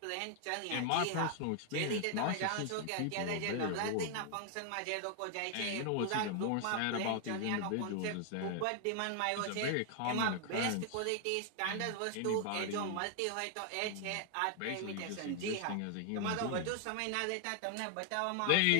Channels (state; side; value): different; both; correlation 0.00